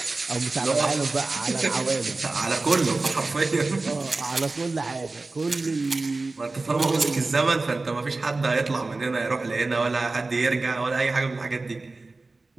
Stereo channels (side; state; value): left; quieter; 3.4 dB